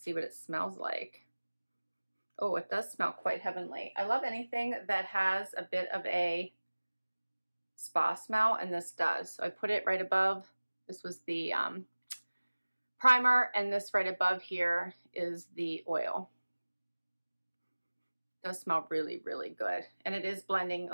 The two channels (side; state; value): both; inverted; correlation -1.00